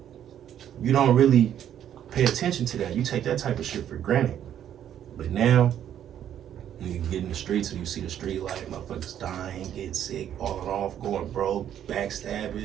you don't really pay attention to that. You take that type of shit for granted. But now, when you get in the streets and you see the street life, motherfuckers dying, getting sick, falling off, going broke,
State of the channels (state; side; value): quieter; left; 10.2 dB